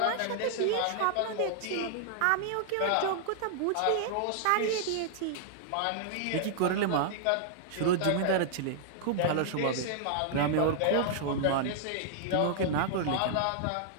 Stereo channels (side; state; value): both; different; correlation -0.01